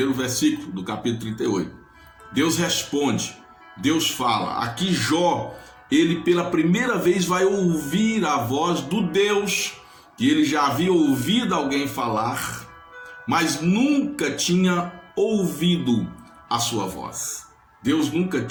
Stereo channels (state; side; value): identical; both; correlation 1.00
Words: versículo do capítulo 38. Deus responde, Deus fala. Aqui Jó, ele pela primeira vez vai ouvir a voz do Deus que ele já havia ouvido alguém falar, mas nunca tinha ouvido a sua voz. Deus nunca